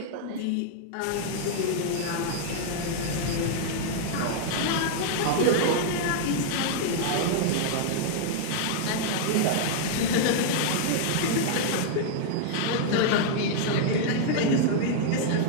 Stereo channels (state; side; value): different; both; correlation 0.00